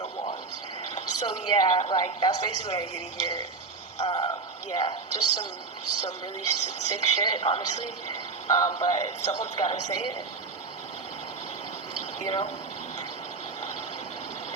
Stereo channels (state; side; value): quieter; left; 4.2 dB